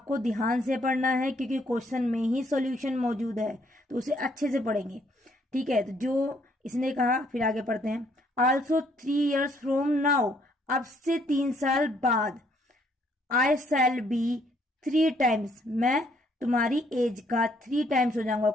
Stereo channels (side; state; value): both; normal; correlation 0.67